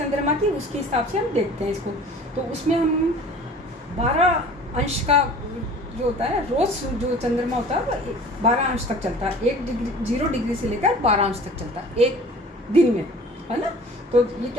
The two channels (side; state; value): both; normal; correlation 0.45